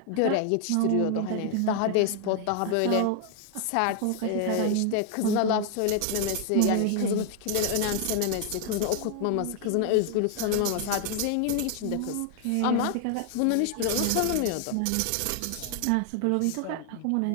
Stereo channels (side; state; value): both; different; correlation 0.00